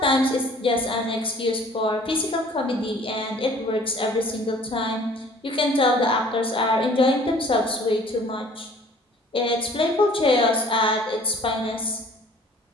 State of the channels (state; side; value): normal; both; correlation 0.52